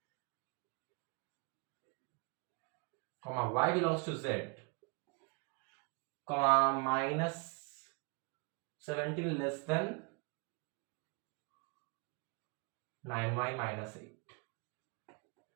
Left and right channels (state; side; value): quieter; left; 32.4 dB